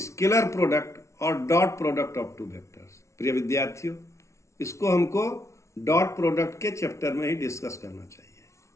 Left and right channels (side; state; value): right; late; 0.14 ms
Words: product और dot product of two vectors. प्रिय विद्यार्थियों, इसको हमको dot product के chapter में ही discuss करना चाहिए.